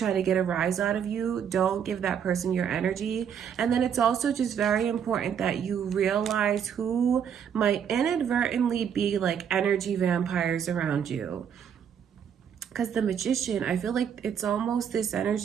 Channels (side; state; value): left; quieter; 8.1 dB